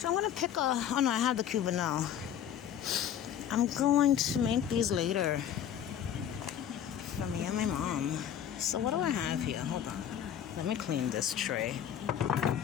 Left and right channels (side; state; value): right; quieter; 9.5 dB